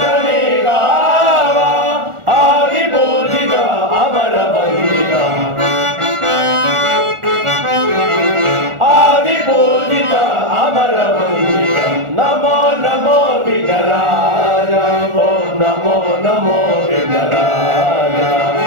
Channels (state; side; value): late; left; 1.4 ms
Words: గావ ఆది పూజిత అమర వందిత ఆది పూజిత అమర వందిత నమో నమో విఘ్నరాజ ఓం నమో నమో విఘ్నరాజ